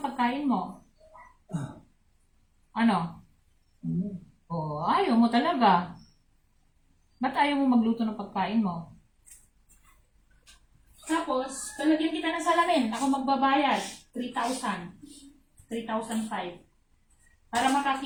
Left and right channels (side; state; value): both; identical; correlation 1.00